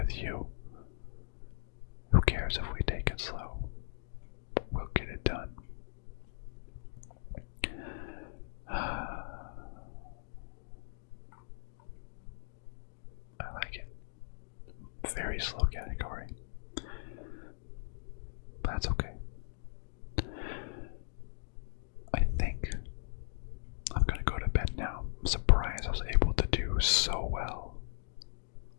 you. Who cares if we take it slow? We'll get it done. I like it. Very slow category. But that's okay. I think I'm gonna go to bed now. I'm surprised I was able to do so well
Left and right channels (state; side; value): silent; right; digital silence